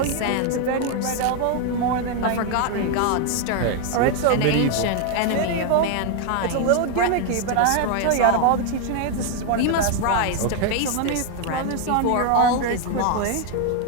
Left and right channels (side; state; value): both; different; correlation 0.01